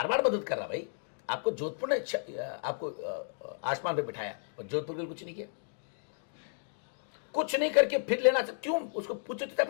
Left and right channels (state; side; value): silent; right; digital silence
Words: मदद कर रहा भाई, आपको जोधपुर ने आपको आसमान पे बिठाया और जोधपुर के लिए कुछ नहीं किया। कुछ नहीं करके फिर लेना चाहते, क्यों? उसको पूछो तो